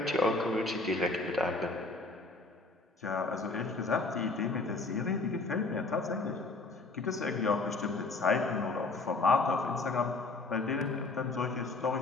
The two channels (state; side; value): quieter; right; 3.4 dB